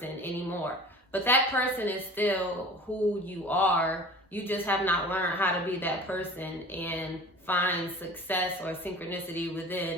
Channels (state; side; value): normal; both; correlation 0.41